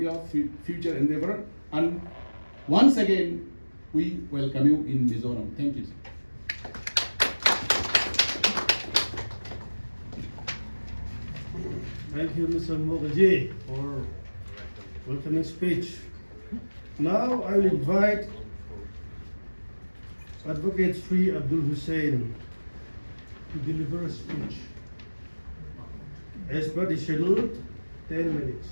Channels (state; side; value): inverted; both; correlation -1.00